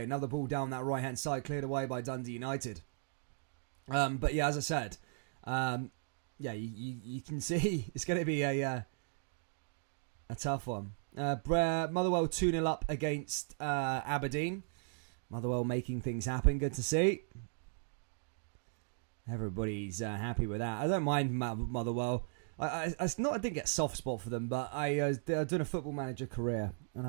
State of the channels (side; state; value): left; silent; digital silence